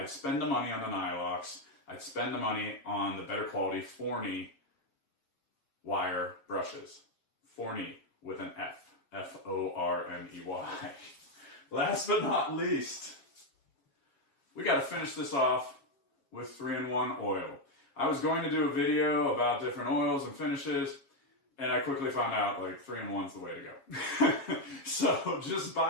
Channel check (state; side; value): late; right; 7.3 ms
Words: spend the money on the Nylox. I'd spend the money on the better quality Forney wire brushes. Forney with an F. F-O-R-N-E-Y. Last but not least, we got to finish this off with 3-in-1 oil. I was going to do a video about different oils and finishes, and I quickly found out like 3-in-1's the way to go. So just